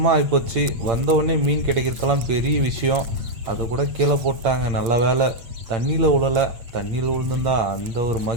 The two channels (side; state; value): left; late; 8.8 ms